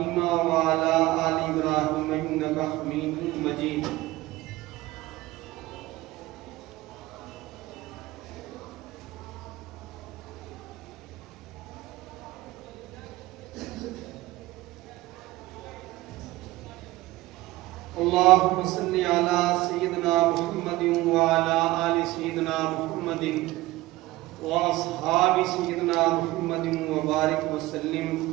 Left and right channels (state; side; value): quieter; left; 18.2 dB